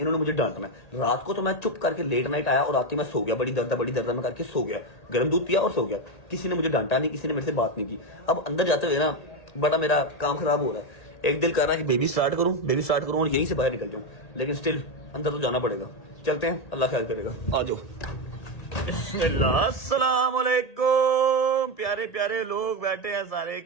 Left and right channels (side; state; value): right; late; 1.8 ms